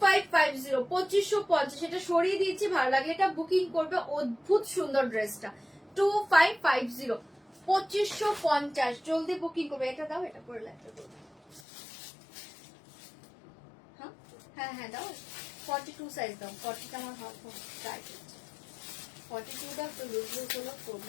2550। এটা সরিয়ে দিচ্ছি, ভালো লাগলে এটা বুকিং করবে। অদ্ভুত সুন্দর ড্রেসটা, 2550, 2550। জলদি বুকিং করবে। এটা দাও, এটা পরে লাগবে। হ্যাঁ হ্যাঁ দাও, 42 সাইজ দাও। 40টা আমার হাত টাইট হচ্ছে, 42টা তো লুজ লুজ হলো,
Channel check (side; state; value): right; drops out; at 11.6 s